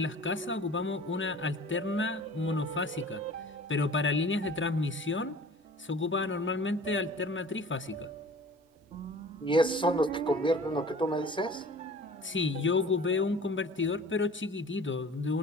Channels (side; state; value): both; normal; correlation 0.44